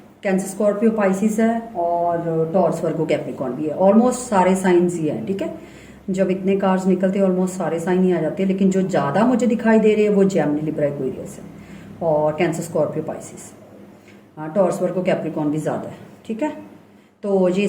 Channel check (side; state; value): both; identical; correlation 1.00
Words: कैंसर स्कॉर्पियो पाइसिस है और टॉरस वर्गो कैप्रिकॉर्न भी है। ऑलमोस्ट सारे साइंस ही है। ठीक है, जब इतने कार्ड्स निकलते हैं ऑलमोस्ट सारे साइन ही आ जाते हैं, लेकिन जो ज़्यादा मुझे दिखाई दे रहे हैं वो जेमिनी लिब्रा एक्वेरियस है और कैंसर स्कॉर्पियो पाइसिस। हाँ, टॉरस वर्गो कैप्रिकॉर्न भी ज़्यादा है। ठीक है, तो ये